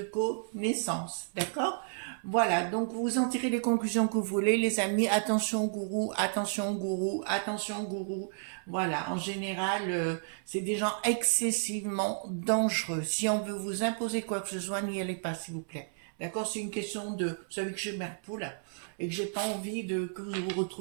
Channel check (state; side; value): silent; left; 57 dB below the other